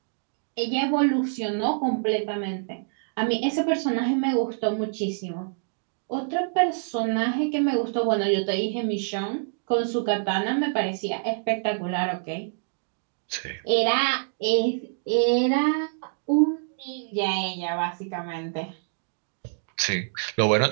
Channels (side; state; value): left; silent; digital silence